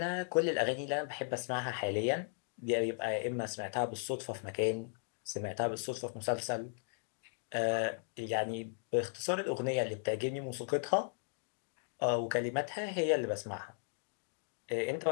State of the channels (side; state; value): right; silent; digital silence